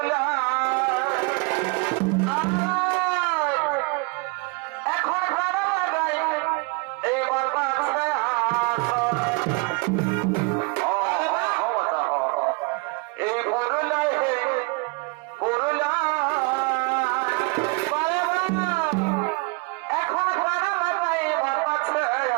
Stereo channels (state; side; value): quieter; left; 29.7 dB